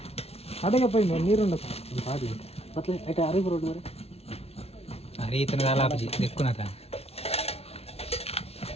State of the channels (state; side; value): late; right; 0.30 ms